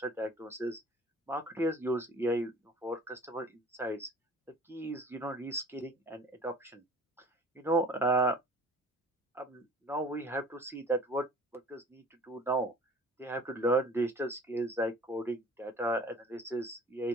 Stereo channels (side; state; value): both; normal; correlation 0.47